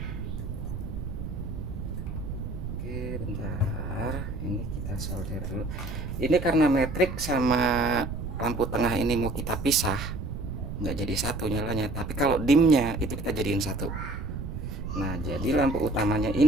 Oke, bentar, ini kita solder dulu. Ini karena metrik sama lampu tengah ini mau kita pisah, nggak jadi satu nyalanya. Tapi kalau dimnya itu kita jadiin satu. Nah, jadi lampu utamanya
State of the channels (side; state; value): right; noise; rumble, 6 dB below the sound